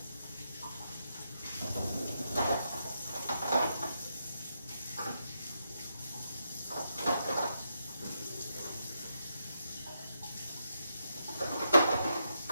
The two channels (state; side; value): inverted; both; correlation -0.82